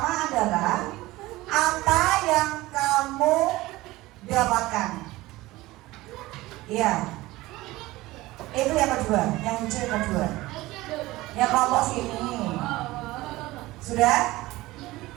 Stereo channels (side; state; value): left; quieter; 18.8 dB